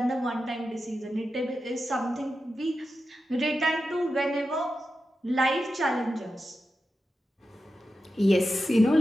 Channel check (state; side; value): normal; both; correlation 0.90